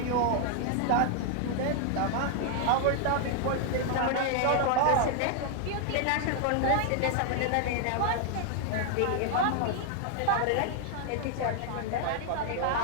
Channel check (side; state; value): both; different; correlation 0.00